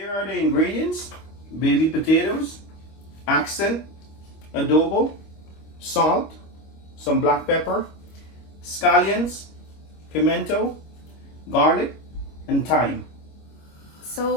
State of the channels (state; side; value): late; right; 25 ms